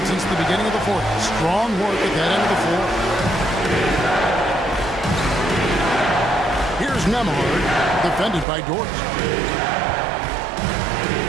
since the beginning of the fourth. Strong work at that end of the floor. Here's Nembhard, defended by Dort.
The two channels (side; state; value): left; drops out; at 8.5 s